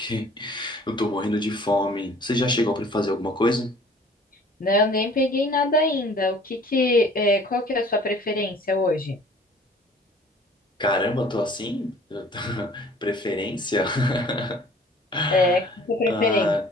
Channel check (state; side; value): normal; both; correlation 0.51